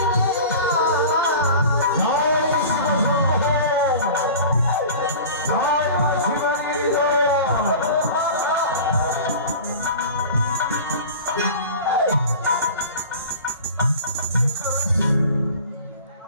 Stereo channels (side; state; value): both; inverted; correlation -0.38